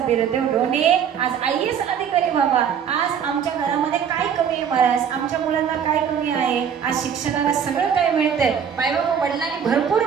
बिरदेव डोने आज IAS अधिकारी बाबा. आज आमच्या घरामध्ये काय कमी आहे महाराज, आमच्या मुलांना काय कमी आहे. आज शिक्षणाला सगळं काय मिळतंय. मायबाबा वडिलांनी भरपूर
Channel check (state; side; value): quieter; left; 7.8 dB